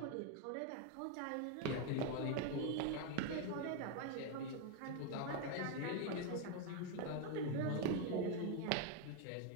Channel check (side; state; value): both; different; correlation 0.01